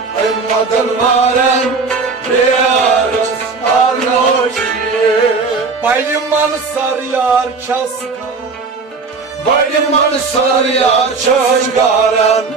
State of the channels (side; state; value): left; quieter; 4.5 dB